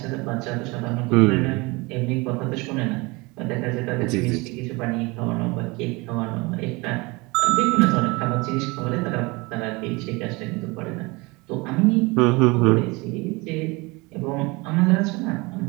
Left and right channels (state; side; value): quieter; left; 25.1 dB